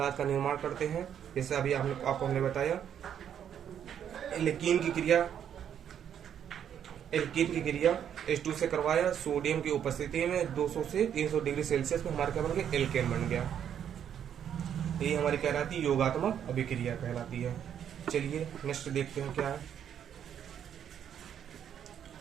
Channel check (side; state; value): left; quieter; 9.1 dB